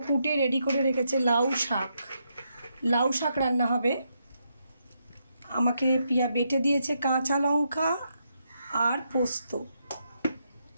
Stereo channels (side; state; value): both; inverted; correlation -0.80